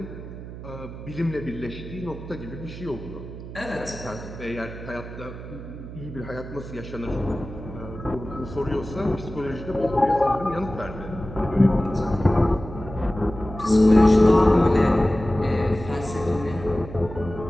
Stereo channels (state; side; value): noise; right; hum, 12 dB below the sound